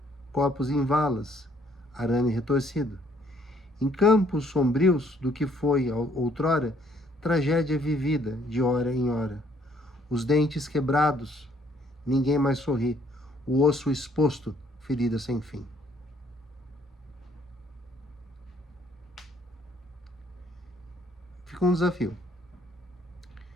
corpos em valas, arame retorcido. Em campos sombrios do que foi outrora, tragédia vivida de hora em hora. Os dentes quebrados, ninguém mais sorri. O osso exposto, ferida sem fim. Fica um desafio.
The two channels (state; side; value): normal; both; correlation 0.65